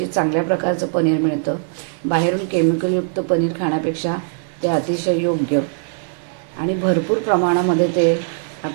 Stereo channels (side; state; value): left; silent; digital silence